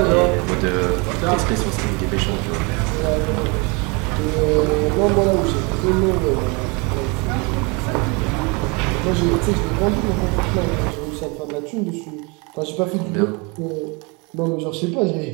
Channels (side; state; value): left; quieter; 29.9 dB